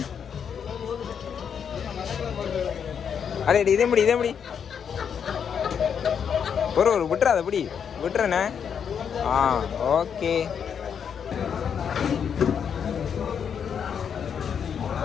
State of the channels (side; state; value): right; quieter; 7.5 dB